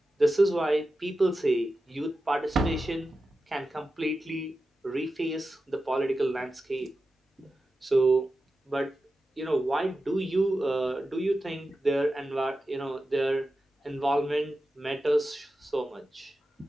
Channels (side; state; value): both; normal; correlation 0.92